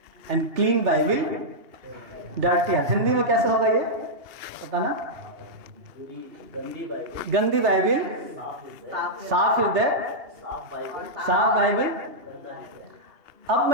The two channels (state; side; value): late; left; 2.8 ms